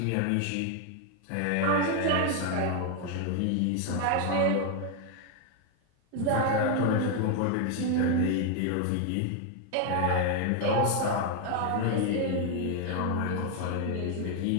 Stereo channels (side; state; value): both; different; correlation 0.01